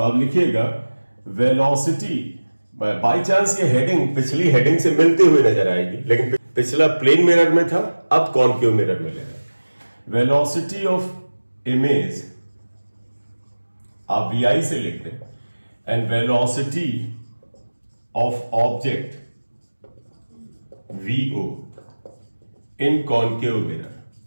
आप लिखिएगा वेलोसिटी, बाय चांस ये हेडिंग पिछली हेडिंग से मिलती हुई नजर आएगी, लेकिन पिछला प्लेन मिरर में था, अब कॉन्केव मिरर में ले रहा है। वेलोसिटी ऑफ इमेज आप VI से लिख दें and velocity of object VO in concave mirror.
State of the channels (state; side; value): inverted; both; correlation -1.00